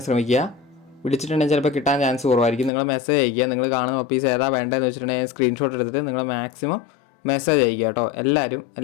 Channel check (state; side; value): drops out; right; at 2.7 s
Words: ശ്രമിക്കുക. വിളിച്ചിട്ടുണ്ടെങ്കിൽ ചിലപ്പോൾ കിട്ടാൻ ചാൻസ് കുറവായിരിക്കും. നിങ്ങൾ മെസ്സേജ് അയക്കുക. നിങ്ങൾ കാണുന്ന പപ്പീസ് ഏതാ വേണ്ടതെന്ന് വെച്ചിട്ടുണ്ടെങ്കിൽ സ്ക്രീൻഷോട്ട് എടുത്തിട്ട് നിങ്ങൾ മാക്സിമം മെസ്സേജ് അയക്കുക കേട്ടോ.